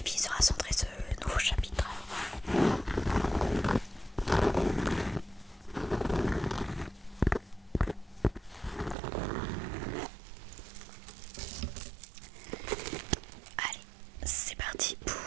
vie sera centré ce nouveau chapitre. Allez, c'est parti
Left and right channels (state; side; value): drops out; left; at 9.0 s